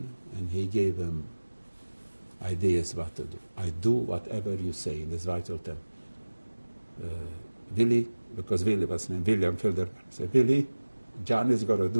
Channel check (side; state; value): both; inverted; correlation -1.00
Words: and he gave him ideas what to do. I do whatever you say. That's why I told him. Willie, because Willie was named William Filderman. I said, Willie, John is going to